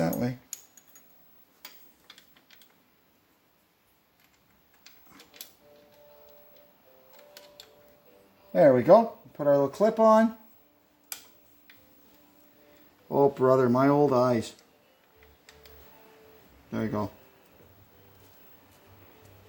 way. There we go. Put our little clip on. Oh brother, my old eyes. There we go.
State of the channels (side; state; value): both; identical; correlation 1.00